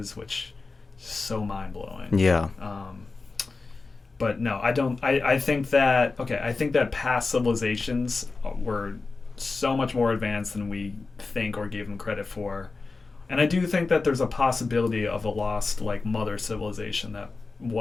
which is so mind-blowing. Yeah. But no, I don't. I think that I think that past civilizations were so much more advanced than we think or give them credit for, and I do think that there's a possibility of a lost like mother civilization that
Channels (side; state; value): right; quieter; 4.0 dB